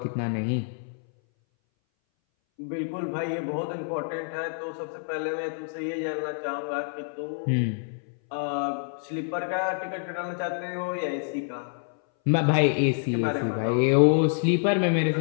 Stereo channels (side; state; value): right; silent; 59 dB below the other